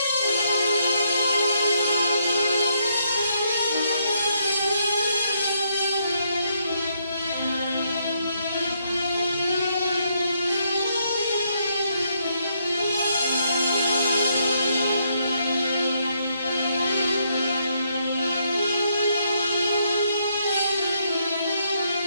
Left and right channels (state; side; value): inverted; both; correlation -0.75